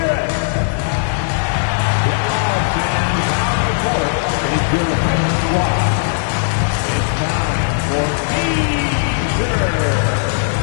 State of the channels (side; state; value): right; silent; digital silence